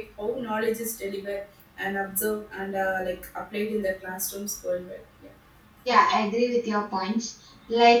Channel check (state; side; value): identical; both; correlation 1.00